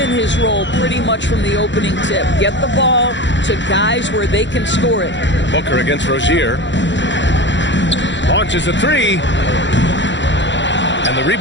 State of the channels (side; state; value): right; late; 0.53 ms